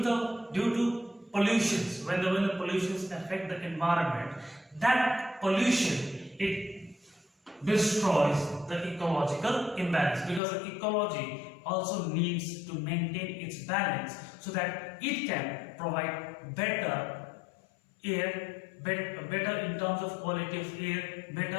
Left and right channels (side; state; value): right; drops out; at 10.4 s